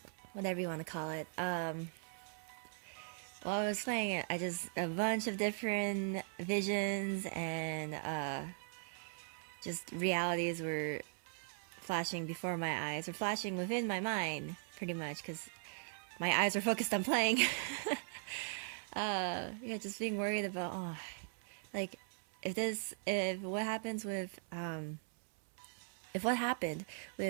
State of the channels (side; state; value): left; silent; 51 dB below the other